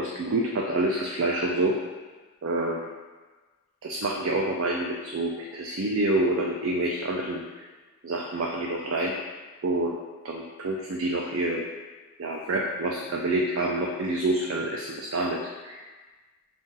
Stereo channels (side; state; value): both; normal; correlation 0.06